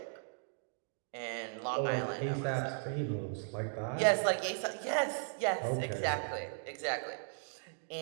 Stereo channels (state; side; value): silent; left; 53 dB below the other